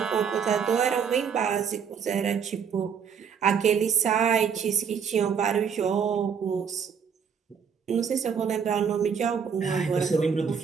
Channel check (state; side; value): quieter; left; 6.9 dB